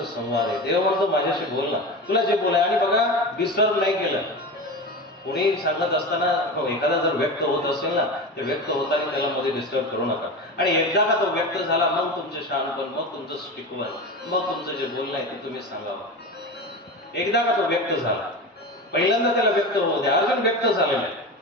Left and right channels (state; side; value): normal; both; correlation 0.26